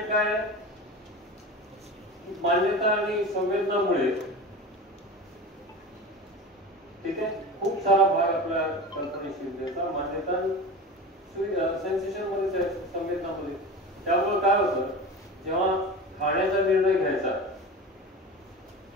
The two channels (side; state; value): both; normal; correlation 0.30